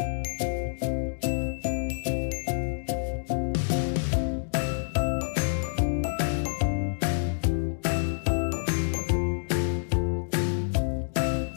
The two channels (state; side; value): silent; right; digital silence